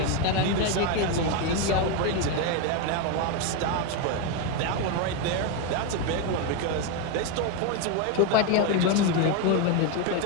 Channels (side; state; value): both; different; correlation 0.02